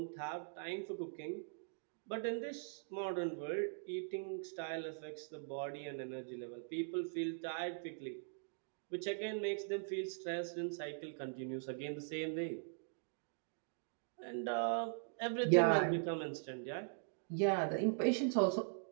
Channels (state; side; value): silent; left; digital silence